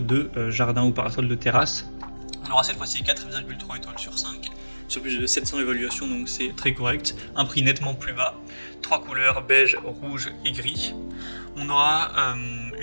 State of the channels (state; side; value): inverted; both; correlation -1.00